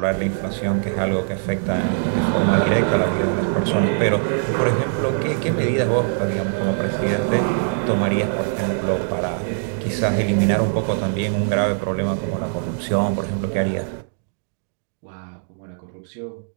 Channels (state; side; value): silent; left; digital silence